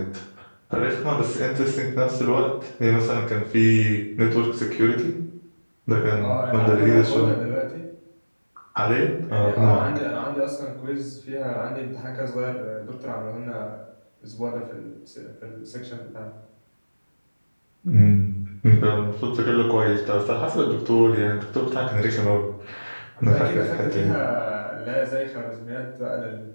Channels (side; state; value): both; inverted; correlation -1.00